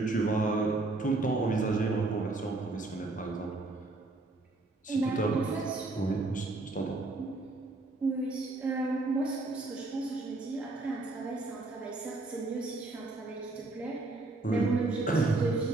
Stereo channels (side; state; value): left; quieter; 3.1 dB